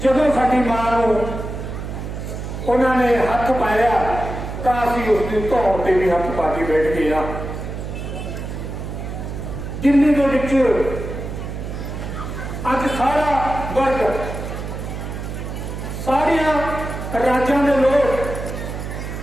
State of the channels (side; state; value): right; noise; hum, 7 dB below the sound